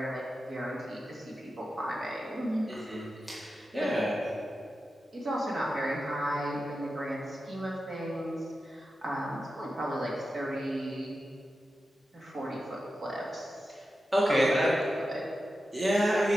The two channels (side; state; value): both; normal; correlation 0.91